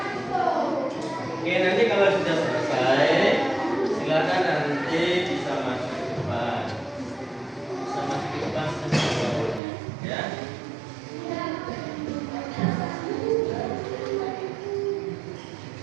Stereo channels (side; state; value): left; drops out; at 9.6 s